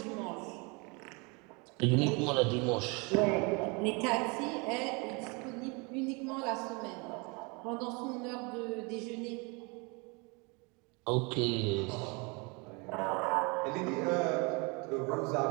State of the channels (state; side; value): quieter; left; 29.6 dB